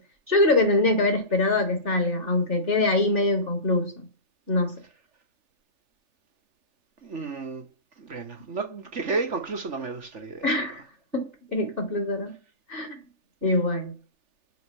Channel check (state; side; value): late; left; 3.4 ms